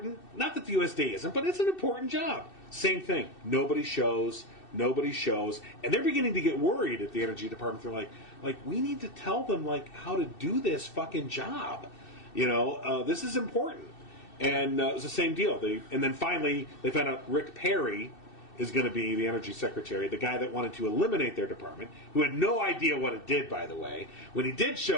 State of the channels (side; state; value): right; late; 2.6 ms